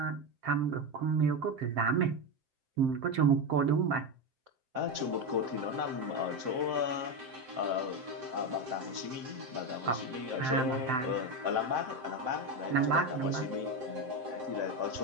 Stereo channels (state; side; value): late; left; 7.7 ms